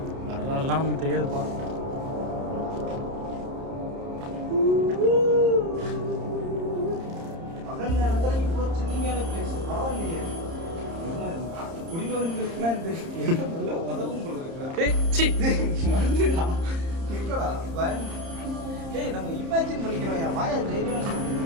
வரலாறுலாம் நமக்கு தெரியாதுப்பா. பகல் நேரத்தில் இவ்வளோ சின்னிங்கான பிளேஸ் பரவாயில்லையே. குடிமகன்களுக்குலாம் இந்த இடம் நல்ல உதவும் போல இருக்குடா. இருக்கடா பயம். ஏய் நம்ம இமேஜின் பண்ணிக்கிறோம். என் வாயா தைரியம் இருக்கு.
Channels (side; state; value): left; late; 30 ms